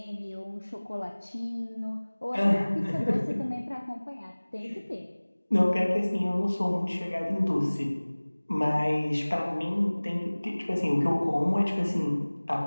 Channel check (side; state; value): both; inverted; correlation -1.00